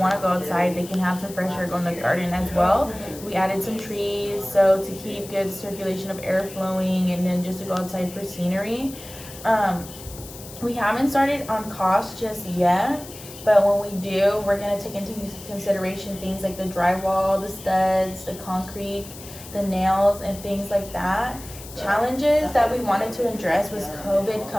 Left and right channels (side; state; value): left; noise; hiss, 16 dB below the sound